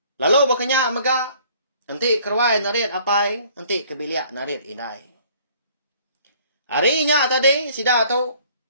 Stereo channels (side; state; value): both; inverted; correlation -0.56